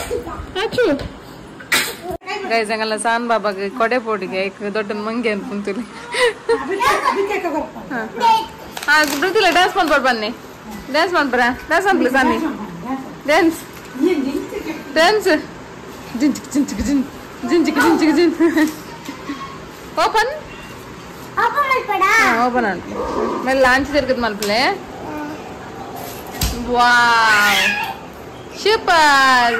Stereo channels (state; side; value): identical; both; correlation 1.00